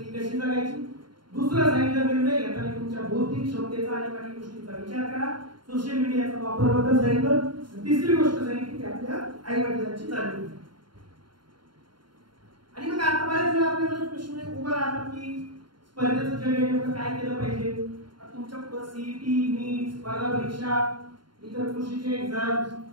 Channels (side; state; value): left; late; 0.72 ms